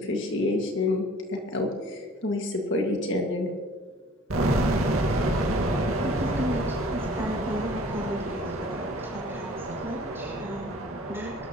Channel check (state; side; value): normal; both; correlation 0.51